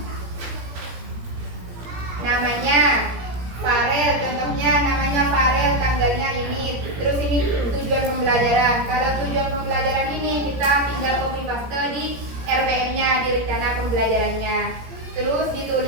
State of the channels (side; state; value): left; late; 17 ms